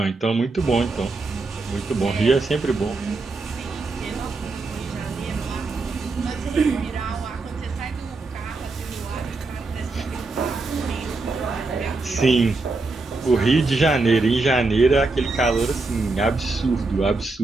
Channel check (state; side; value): quieter; left; 3.6 dB